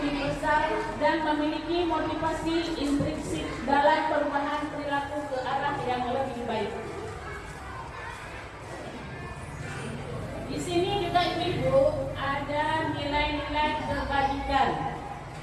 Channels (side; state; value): both; identical; correlation 1.00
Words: dan memiliki motivasi intrinsik dalam perubahan perilaku ke arah yang lebih baik. Di sini juga ibu ada nilai-nilai kebajikan.